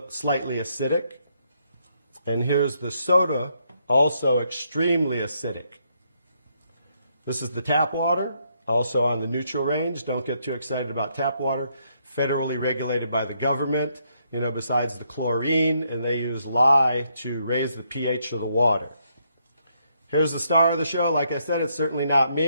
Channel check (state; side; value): inverted; both; correlation -0.74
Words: slightly acidic. And here's the soda, also extremely acidic. This is the tap water, also on the neutral range. Don't get too excited about tap water. Federally regulated by the government, besides the chlorine, and they use lye to raise the pH of the water. Here's the star of the show. Like I said, it's certainly not